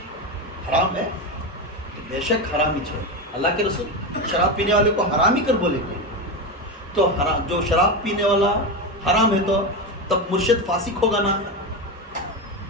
حرام ہے تو بے شک حرامی چھوڑ. اللہ کے رسول شراب پینے والے کو حرامی کر بولے گے تو جو شراب پینے والا حرام ہے تو تب مرشد فاسق ہوگا نا.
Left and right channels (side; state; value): both; normal; correlation 0.16